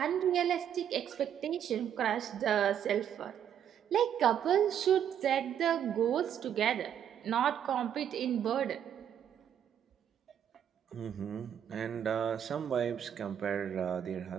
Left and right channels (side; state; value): left; quieter; 9.3 dB